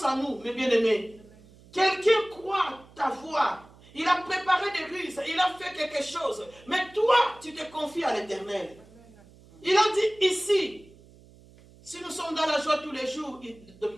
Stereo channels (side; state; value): right; noise; hum, 24 dB below the sound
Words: en nous, mes bien-aimés. Quelqu'un croit ta voix. Il a préparé des ruses. Il a fait quelque chose. Mais toi, tu te confies à l'Éternel. Il a dit ici, si nous sommes dans la joie tous les jours,